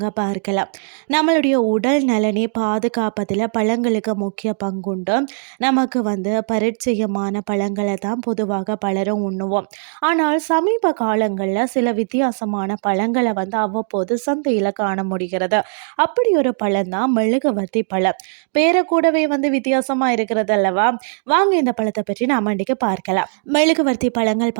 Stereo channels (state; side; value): silent; left; 67 dB below the other